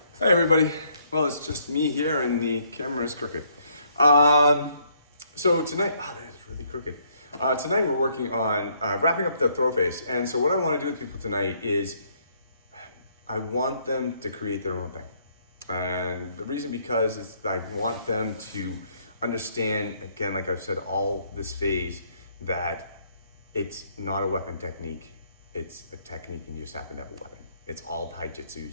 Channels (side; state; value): both; inverted; correlation -0.68